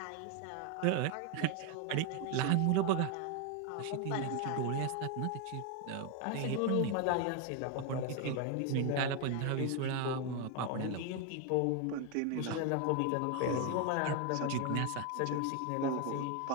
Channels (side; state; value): both; different; correlation 0.01